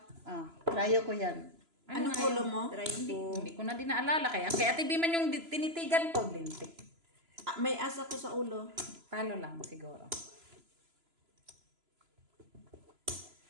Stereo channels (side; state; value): left; late; 3.0 ms